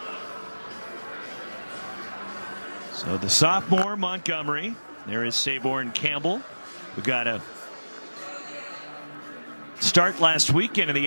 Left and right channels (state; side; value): inverted; both; correlation -1.00